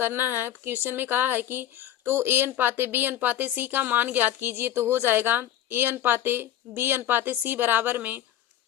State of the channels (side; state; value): right; quieter; 11.7 dB